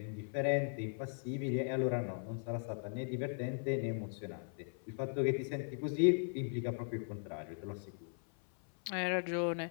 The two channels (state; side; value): silent; right; 52 dB below the other